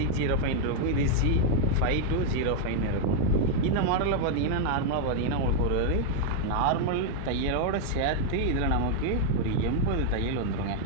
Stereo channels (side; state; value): both; different; correlation 0.00